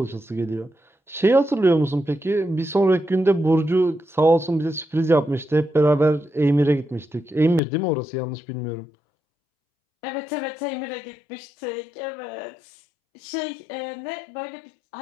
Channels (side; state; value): right; drops out; at 7.6 s